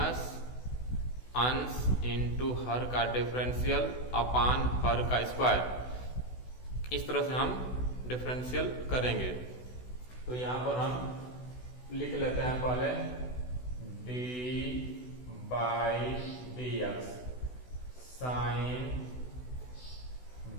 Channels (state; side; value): late; right; 16 ms